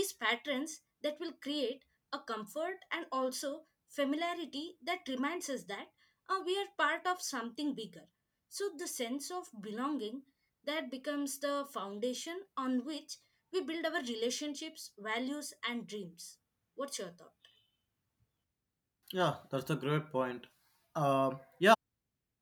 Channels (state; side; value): identical; both; correlation 1.00